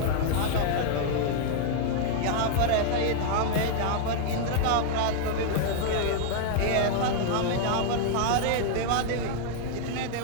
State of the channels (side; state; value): both; different; correlation 0.00